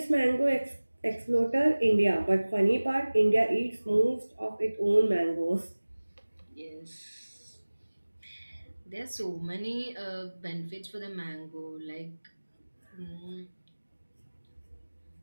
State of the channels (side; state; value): both; inverted; correlation -1.00